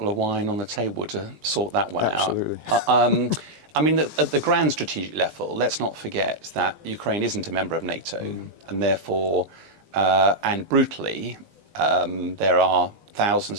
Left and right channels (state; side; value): late; left; 18 ms